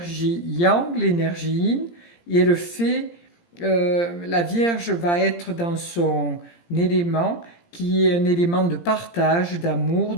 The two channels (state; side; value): late; right; 17 ms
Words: yang, l'énergie yin, et elle fait, la Vierge va être dans son élément, qui est un élément de partage, d'amour,